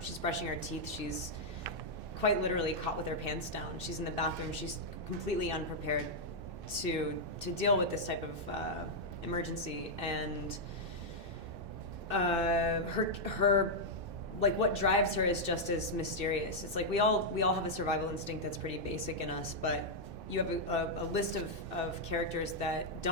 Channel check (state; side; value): late; left; 2.6 ms